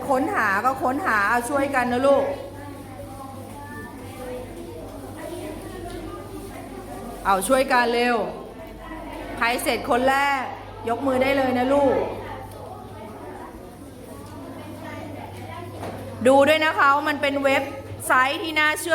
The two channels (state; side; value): identical; both; correlation 1.00